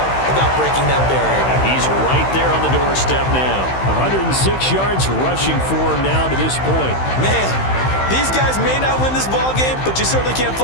about breaking that barrier. He's right there on the doorstep now. 106 yards rushing for him now to this point. Man, these guys may not win this ball game, but you certainly can't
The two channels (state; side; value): late; right; 15 ms